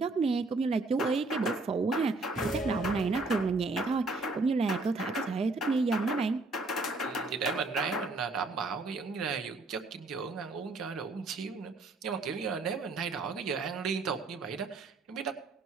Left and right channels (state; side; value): quieter; left; 3.4 dB